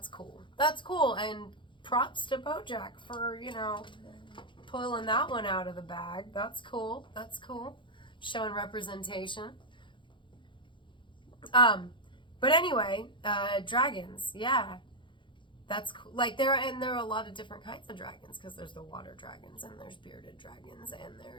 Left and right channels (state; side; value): late; right; 0.23 ms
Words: cool. That's cool, and props to BoJack for, pulling that one out of the bag. That's cool. That's cool. Showing representation. But anyway, dragons, yeah. That's cool. Like, there are a lot of different kinds of dragons, because there's the water dragons, and there's bearded dragons, and